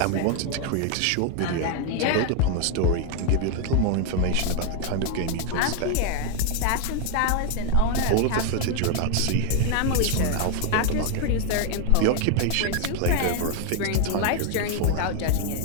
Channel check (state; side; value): different; both; correlation 0.01